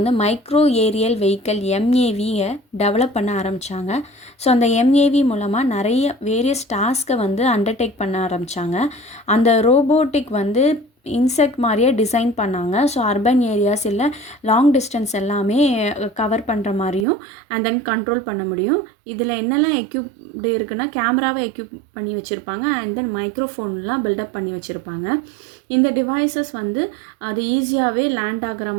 மைக்ரோ ஏரியல் வெஹிக்கல் எம்ஏவியை டெவலப் பண்ண ஆரம்பித்தாங்க. ஸோ அந்த எம்ஏவி மூலமாக நிறைய வேரியஸ் டாஸ்க்கை வந்து அண்டர்டேக் பண்ண ஆரம்பித்தாங்க. அந்த ரோபோட்டிக் வந்து இன்செக்ட் மாதிரியே டிசைன் பண்ணாங்க. ஸோ அர்பன் ஏரியாஸ் இல்லை லாங் டிஸ்டன்ஸ் எல்லாமே கவர் பண்ணுற மாதிரியும் அண்ட் தென் கண்ட்ரோல் பண்ண முடியும். இதில் என்னெல்லாம் எக்யூப்டு இருக்குன்னா கேமராவை எக்யூப் பண்ணி வச்சுருப்பாங்க அண்ட் தென் மைக்ரோஃபோன்லாம் பில்டப் பண்ணி வச்சுருப்பாங்க. இந்த டிவைசஸ் வந்து அது ஈஸியாகவே லேண்ட் ஆகிற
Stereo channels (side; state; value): left; drops out; at 17.1 s